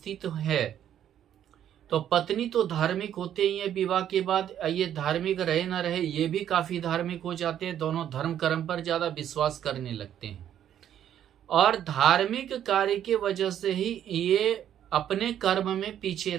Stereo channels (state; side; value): quieter; left; 10.4 dB